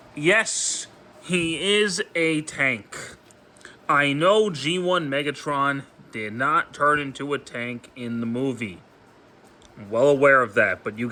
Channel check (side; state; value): both; identical; correlation 1.00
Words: Yes, he is a tank. I know G1 Megatron did not turn into a tank in the movie. I'm well aware of that, but you